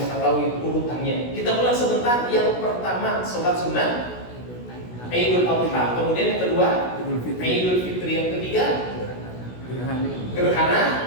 mengetahui urutannya. Kita ulang sebentar. Yang pertama sholat sunnah Idul Adha, kemudian yang kedua Idul Fitri, yang ketiga gerhana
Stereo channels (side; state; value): right; late; 16 ms